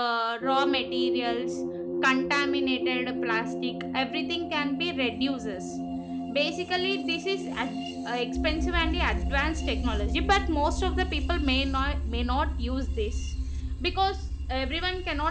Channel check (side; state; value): both; identical; correlation 1.00